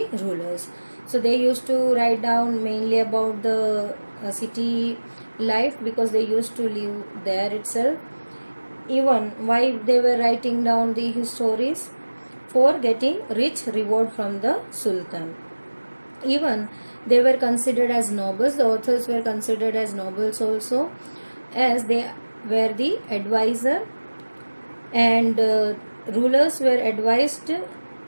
rulers. So they used to write down mainly about the city life because they used to live there itself. Even why they were writing down the histories? For getting rich reward from the sultan. Even they were considered as nobles. The authors were considered as nobles also, as they were the advisor, and rulers were advised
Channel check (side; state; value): both; inverted; correlation -1.00